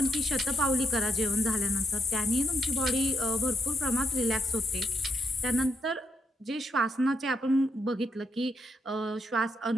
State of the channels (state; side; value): normal; both; correlation 0.79